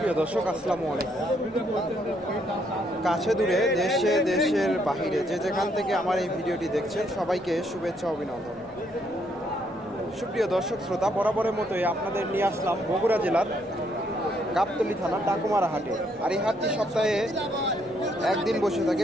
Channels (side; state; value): both; normal; correlation 0.72